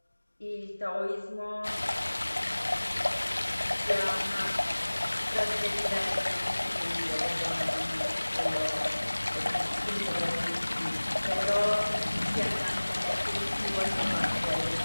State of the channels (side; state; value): both; inverted; correlation -1.00